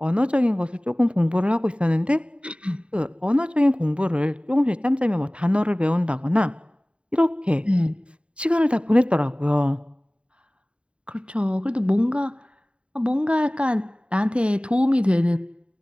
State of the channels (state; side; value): late; left; 0.058 ms